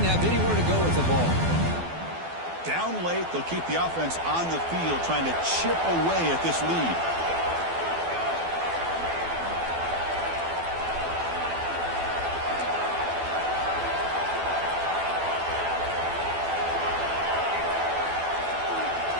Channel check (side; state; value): left; late; 12 ms